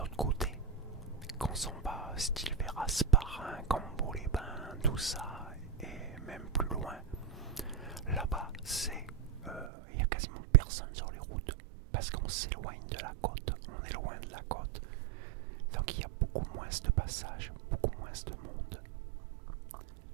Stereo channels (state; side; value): drops out; left; at 9.7 s